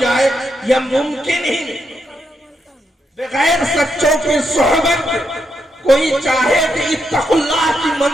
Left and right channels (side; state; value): both; normal; correlation 0.81